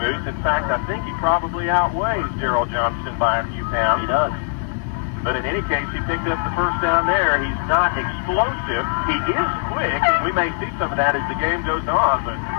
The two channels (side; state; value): right; silent; digital silence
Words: In fact, I think he probably outweighs Gerald Johnston by a few pounds. He does. But in any case, he picked up the first down there. He's not explosive. He is quick, and we may see some of that as the game goes on. But